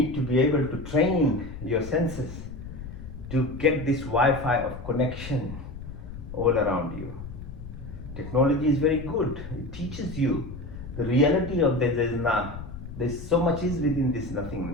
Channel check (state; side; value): noise; left; rumble, 11 dB below the sound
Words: to be able to train your senses to get this Wi-Fi of connection all around you. Technology is very good. It teaches you the reality of there's so much is within this